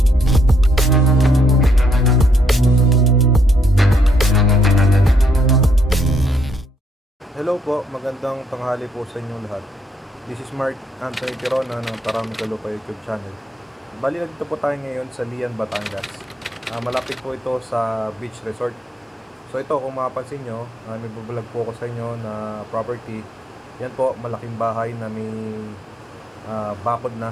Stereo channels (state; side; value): normal; both; correlation 0.73